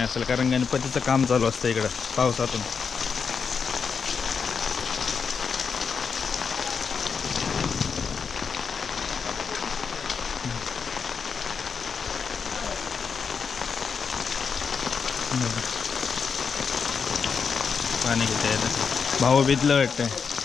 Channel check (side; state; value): right; quieter; 5.9 dB